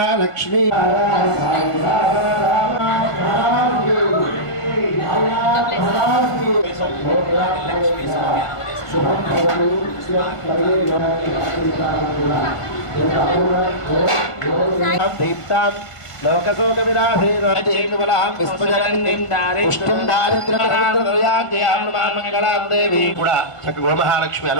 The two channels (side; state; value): right; late; 1.5 ms